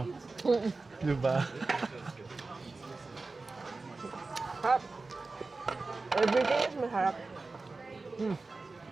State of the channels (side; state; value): left; quieter; 3.7 dB